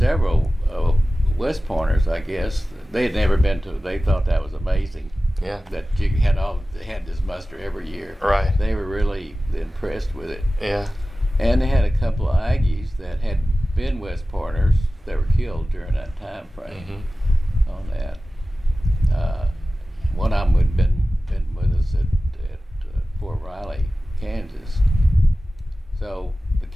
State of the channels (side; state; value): both; normal; correlation 0.96